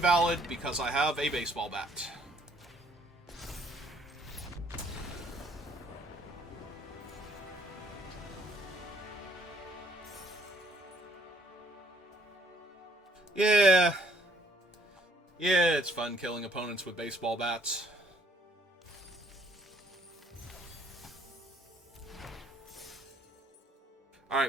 because I have a baseball bat. Yeah. Yeah, it's fun killing opponents with baseball bats.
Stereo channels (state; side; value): normal; both; correlation 0.65